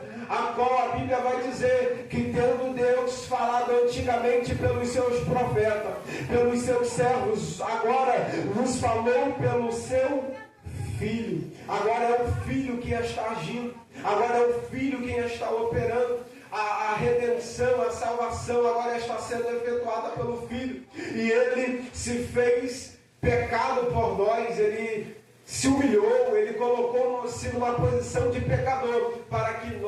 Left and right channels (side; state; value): both; identical; correlation 1.00